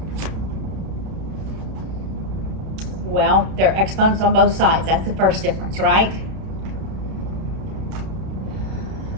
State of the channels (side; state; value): left; late; 31 ms